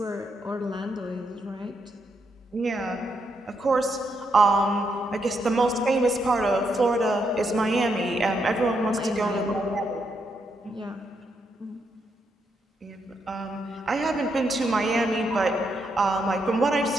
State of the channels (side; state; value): both; normal; correlation 0.79